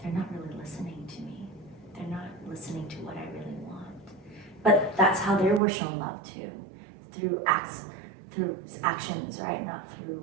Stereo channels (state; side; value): drops out; left; at 5.6 s